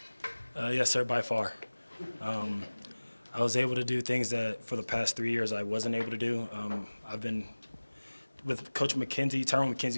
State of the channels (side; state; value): both; inverted; correlation -1.00